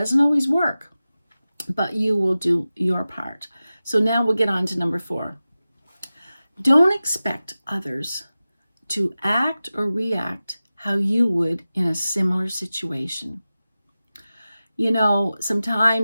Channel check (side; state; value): both; inverted; correlation -0.95